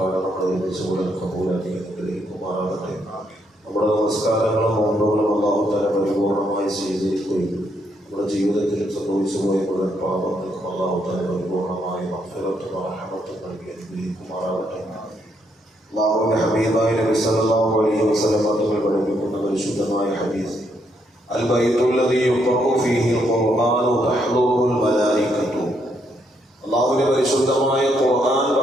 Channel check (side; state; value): both; normal; correlation 0.75